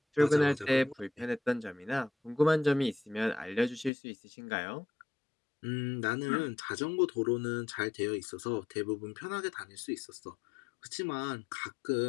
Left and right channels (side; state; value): right; drops out; at 3.9 s